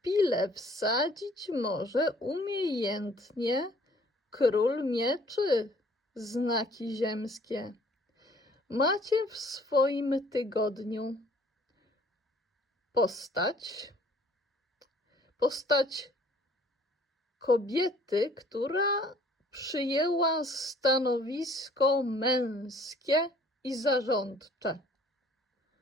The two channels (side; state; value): both; normal; correlation 0.57